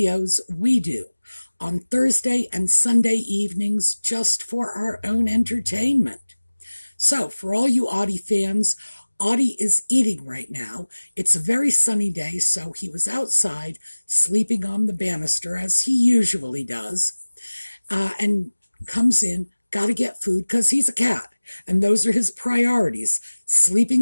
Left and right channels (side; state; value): both; inverted; correlation -1.00